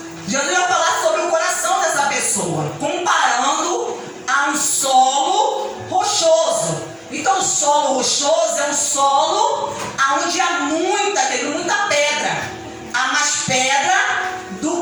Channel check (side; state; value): both; identical; correlation 1.00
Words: Jesus vai falar sobre o coração dessa pessoa, comparando a um solo rochoso. Então o solo rochoso é um solo onde há muita pedra. Há mais pedra do